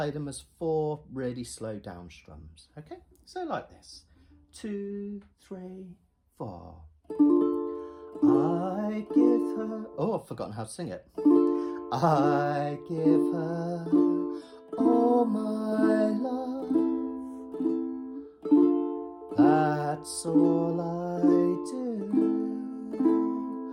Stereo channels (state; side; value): identical; both; correlation 1.00